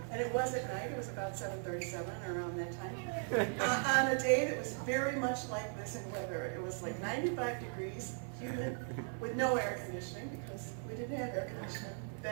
and it was at night, it was about 7:37 around that time, on a day that was very much like this in weather. It was like 95 degrees, humid, with no air conditioning, because we didn't have air conditioning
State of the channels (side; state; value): left; silent; 52 dB below the other